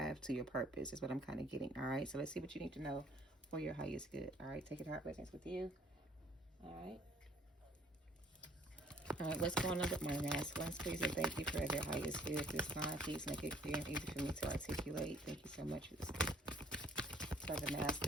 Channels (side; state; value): both; normal; correlation 0.59